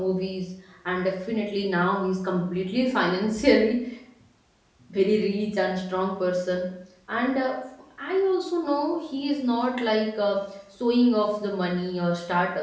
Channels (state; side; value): identical; both; correlation 1.00